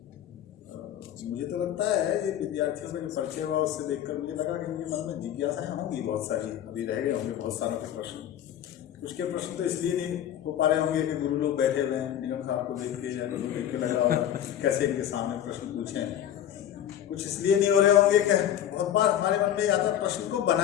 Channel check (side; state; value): right; quieter; 10.8 dB